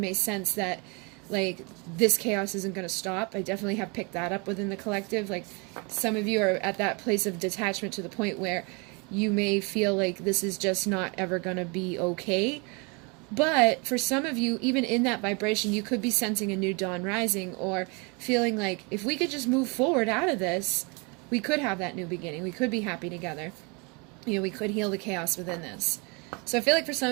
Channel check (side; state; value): left; quieter; 30.8 dB